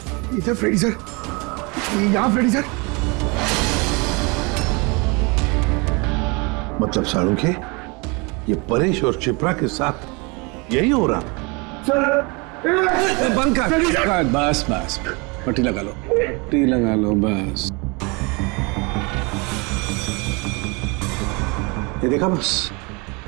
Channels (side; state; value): left; quieter; 28.9 dB